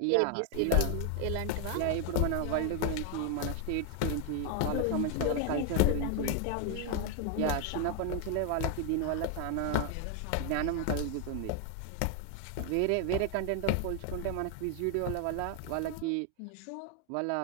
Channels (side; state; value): both; different; correlation 0.01